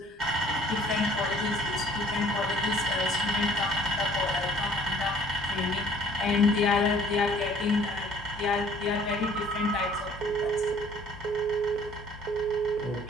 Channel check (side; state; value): both; normal; correlation 0.55